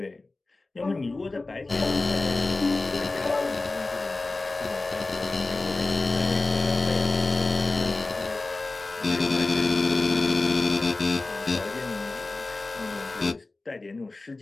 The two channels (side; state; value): right; quieter; 3.3 dB